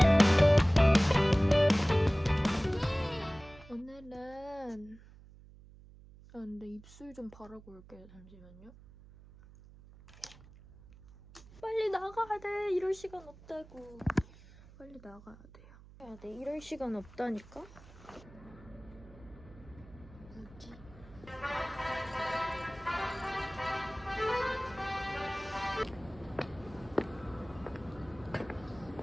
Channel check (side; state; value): right; noise; hum, 21 dB below the sound